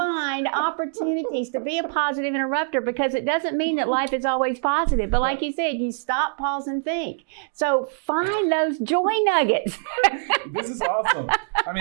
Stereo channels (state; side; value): silent; left; digital silence